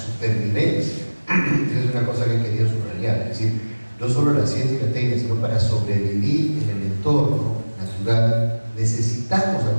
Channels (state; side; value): inverted; both; correlation -1.00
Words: Esa es una cosa que quería subrayar. Es decir, no solo la ciencia y la técnica, sino para sobrevivir en el entorno natural necesitamos